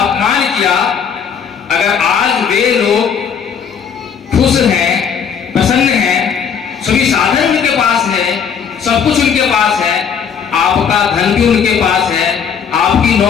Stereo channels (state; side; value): quieter; right; 7.1 dB